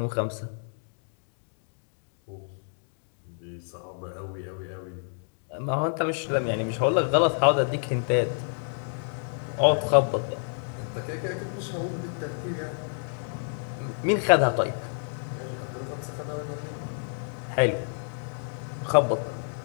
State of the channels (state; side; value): silent; right; digital silence